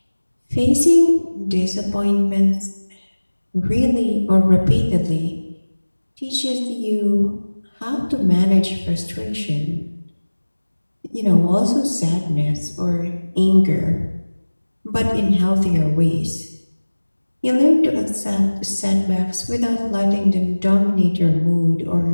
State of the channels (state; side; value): inverted; both; correlation -1.00